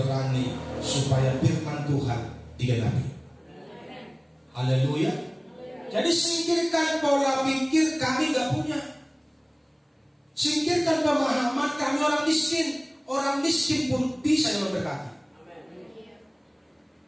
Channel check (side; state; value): both; identical; correlation 1.00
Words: supaya firman Tuhan digenapi. Haleluya. Jadi singkirkan pola pikir kami gak punya. Singkirkan pemahaman kami orang miskin. Orang miskin pun bisa yang memberkati.